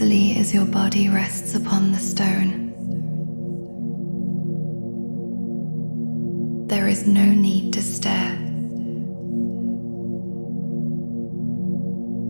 as your body rests upon the stone. There is no need to stare,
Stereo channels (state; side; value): inverted; both; correlation -1.00